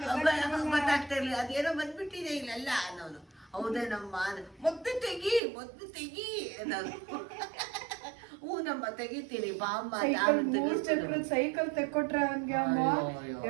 ಗೊತ್ತಾಗ್ತಾ ಇರ್ಲಿಲ್ಲ, ಅದೇನೋ ಬಂದ್ಬಿಟ್ಟಿದೆ ಇಲ್ಲೆಲ್ಲ ಅನ್ನೋನು. ಹೌದೇ ನಮ್ಮ ಮೊದ್ಲು ತೆಗಿ ಅನ್ನೋನು. ಹ್ಞೂ ನಮ್ಮ ತೆಗಿತೀನಿ ಬಾಮ್ಮ. ಸೈಕಲ್ ತೆಕ್ಕೊಟ್ರೆ ಅವನ್ಗೆ ಅಮ್ಮ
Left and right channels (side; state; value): left; drops out; at 5.4 s